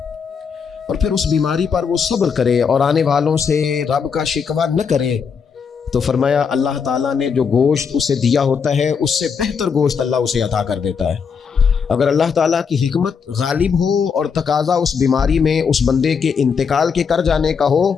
اور پھر اس بیماری پر وہ صبر کرے اور آنے والوں سے رب کا شکوہ نہ کرے، تو فرمایا اللہ تعالیٰ نے جو گوشت اسے دیا ہوتا ہے اس سے بہتر گوشت اللہ اسے عطا کر دیتا ہے۔ اگر اللہ تعالیٰ کی حکمت غالب ہو اور تقاضا اس بیماری میں اس بندے کے انتقال کے کر جانے کا ہو،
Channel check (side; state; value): right; quieter; 6.2 dB